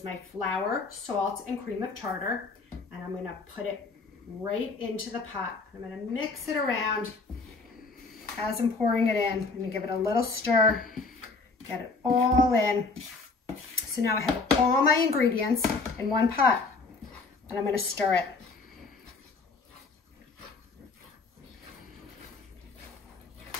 my flour, salt, and cream of tartar, and I'm going to put it right into the pot. I'm going to mix it around as I'm pouring it in. I'm going to give it a little stir, get it all in. So now I have all my ingredients in one pot, and I'm going to stir it.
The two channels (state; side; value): quieter; right; 4.1 dB